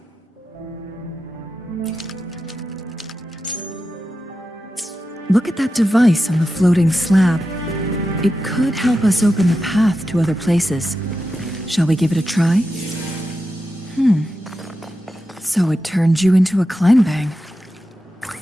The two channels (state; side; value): normal; both; correlation 0.90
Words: Look at that device on the floating slab. It could help us open the path to other places. Shall we give it a try? So it turned you into a Kleinbang.